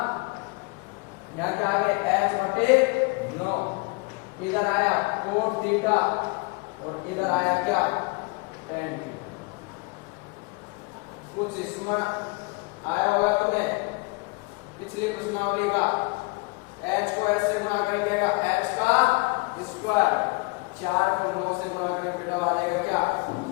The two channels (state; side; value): quieter; right; 28.4 dB